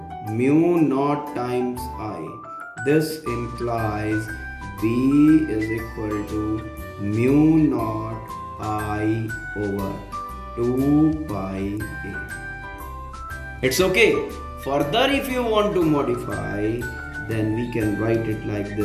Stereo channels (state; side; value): identical; both; correlation 1.00